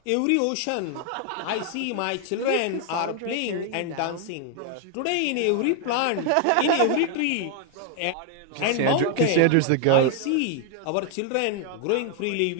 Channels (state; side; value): different; both; correlation 0.01